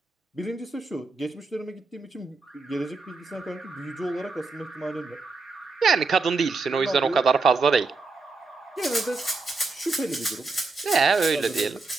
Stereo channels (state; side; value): quieter; left; 3.9 dB